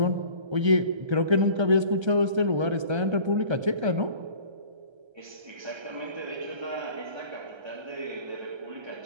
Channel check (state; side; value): late; left; 1.3 ms